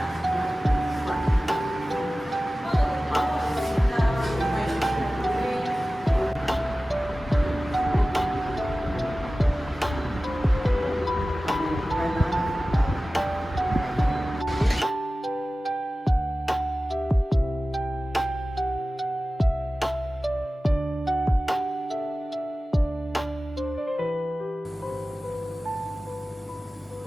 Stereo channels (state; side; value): normal; both; correlation 0.96